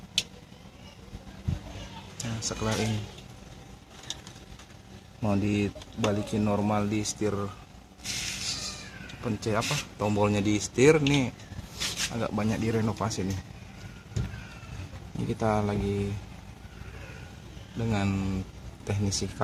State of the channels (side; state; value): both; identical; correlation 1.00